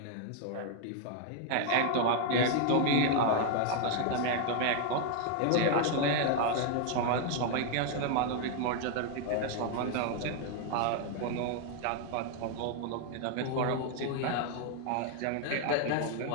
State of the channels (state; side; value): different; both; correlation 0.00